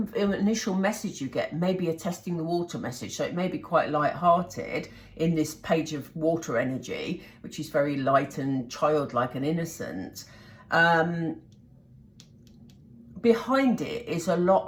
initial message you get may be a testing the water message, so it may be quite light-hearted in this page of water energy, which is very light and childlike and innocent. Behind it is a lot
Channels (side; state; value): both; identical; correlation 1.00